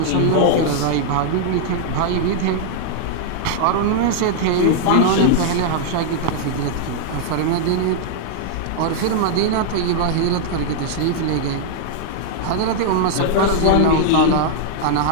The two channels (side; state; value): both; different; correlation -0.01